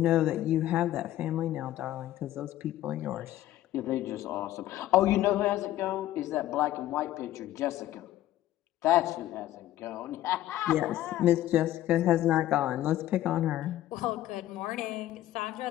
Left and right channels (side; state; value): right; quieter; 13.9 dB